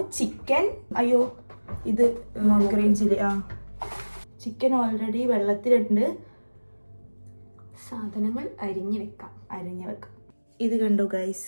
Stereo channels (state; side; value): inverted; both; correlation -1.00